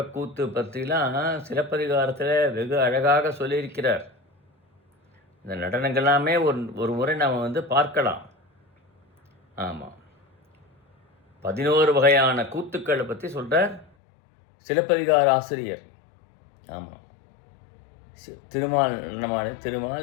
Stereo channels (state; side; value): drops out; right; at 13.9 s